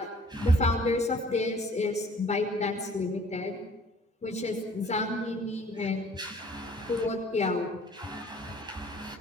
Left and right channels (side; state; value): both; normal; correlation 0.54